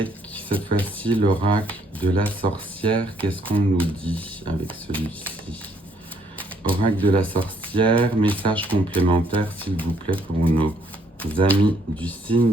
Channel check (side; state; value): both; normal; correlation 0.68